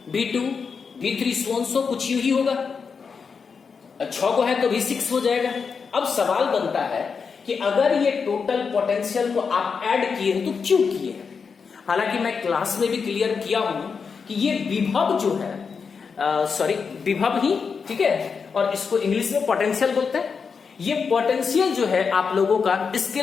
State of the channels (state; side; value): quieter; right; 5.6 dB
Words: V2 V3 सो कुछ यूं ही होगा, 6 को है तो V6 हो जाएगा। अब सवाल बनता है कि अगर ये टोटल पोटेंशियल को आप ऐड किए तो क्यों किए? हालांकि मैं क्लास में भी क्लियर किया हूं कि ये विभव जो है, विभव ही, ठीक है, और इसको इंग्लिश में पोटेंशियल बोलते हैं। ये पोटेंशियल जो है आप लोगों का